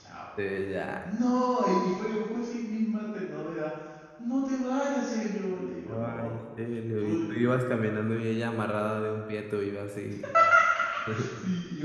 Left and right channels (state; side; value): identical; both; correlation 1.00